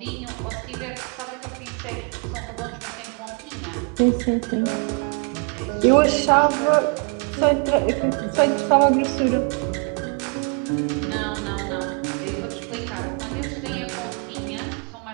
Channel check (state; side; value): quieter; left; 37.8 dB